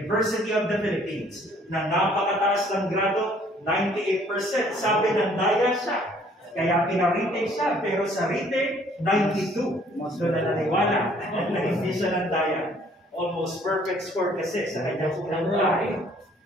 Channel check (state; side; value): normal; both; correlation 0.60